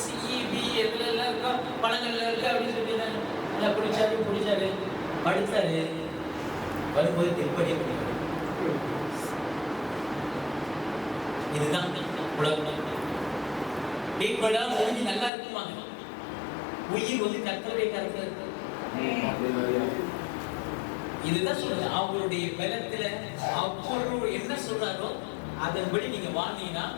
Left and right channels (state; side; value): drops out; right; at 15.3 s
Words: சி, பி எதுல எல்லாம் இருக்கோ பழங்கள்ல இருக்கு அப்படின்னு சொல்லிட்டாங்க. நல்லா குடிச்சாரு படுத்தாரு. வரும்போது திருப்பதியை பண்ணிடுறாரு. இதுதான் உலகம். டீப்பெல்லாம் முடிஞ்சு நல்லா இருக்குமாங்க. உயிர் வந்து கர்த்தருடைய கருத்துல இருக்கு. இதுதான் சொல்றது. அவருடைய பலத்துல அவர் என்ன சொல்றாரோ அதன்படி நீங்க வாழ்ந்தீங்கன்னா